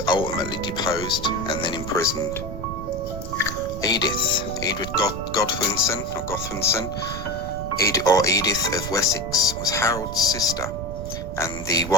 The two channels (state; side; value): noise; right; rumble, 8 dB below the sound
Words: ultimately deposed and then imprisoned. Edith Godwinson, Edith of Wessex, was Harold's sister and the